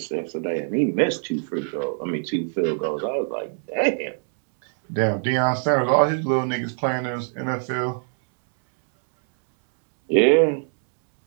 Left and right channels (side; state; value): left; silent; 63 dB below the other